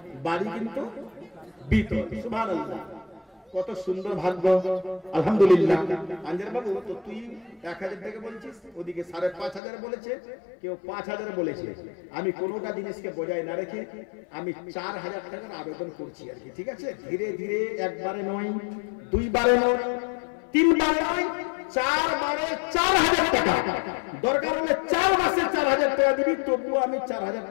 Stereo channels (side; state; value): right; drops out; at 9.6 s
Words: বাড়ি কিন্তু বিতর। সুবহানাল্লাহ, কত সুন্দর ভাগ্য, আলহামদুলিল্লাহ। আনজার বাবু তো তুই 1000 টাকা বলছিস, ওদিকে 5,500 বলেছে, কেউ 5000 বলেছে। আমি কোনোটা জিনিসকে বজায় না রেখে আমি 4000 টাকার আবেদন করছি আর কি, ঠিক আছে? ধীরে ধীরে, একবারে নয়, দুইবারে নয়, তিনবারে নয়, 4 বারে 4000 টাকা। দরকার হলে 4 মাসে 4000 টাকা দিবি, তবুও আমি 4000